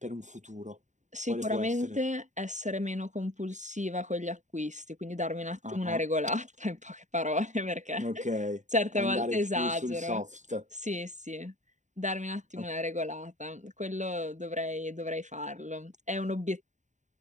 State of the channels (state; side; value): late; left; 0.35 ms